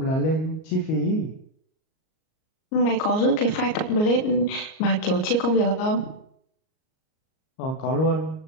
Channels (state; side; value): late; right; 38 ms